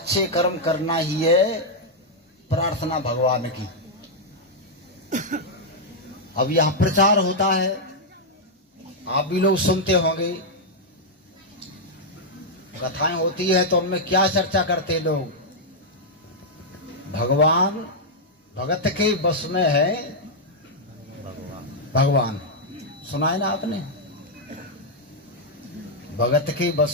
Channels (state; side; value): normal; both; correlation -0.04